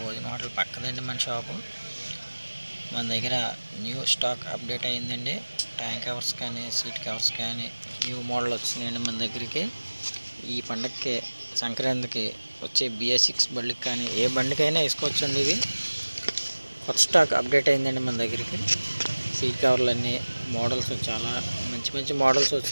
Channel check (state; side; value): inverted; both; correlation -1.00